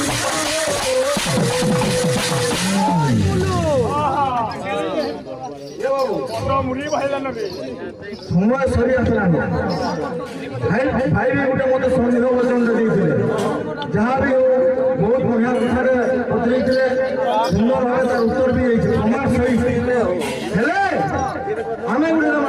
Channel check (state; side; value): identical; both; correlation 1.00